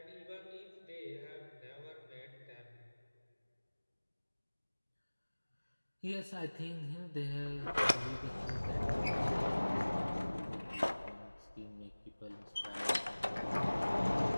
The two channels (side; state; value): both; inverted; correlation -1.00